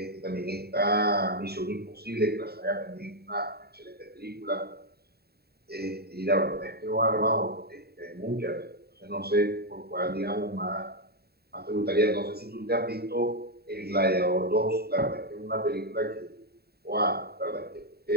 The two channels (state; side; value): late; left; 0.46 ms